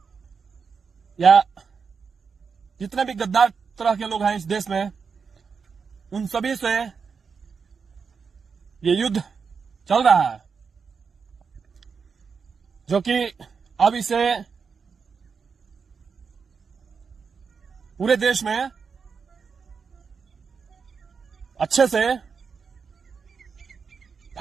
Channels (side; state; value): left; quieter; 5.6 dB